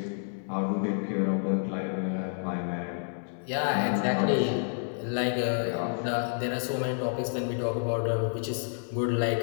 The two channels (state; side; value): silent; right; digital silence